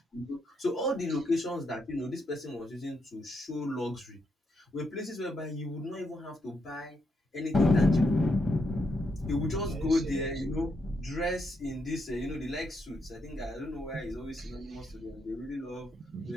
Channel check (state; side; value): normal; both; correlation 0.79